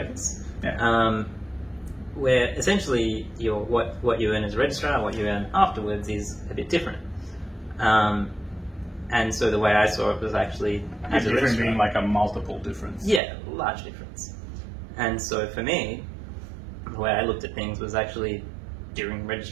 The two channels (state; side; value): drops out; left; at 13.2 s